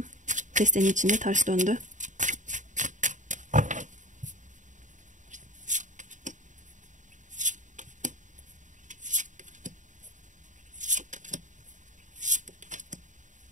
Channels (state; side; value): late; left; 0.36 ms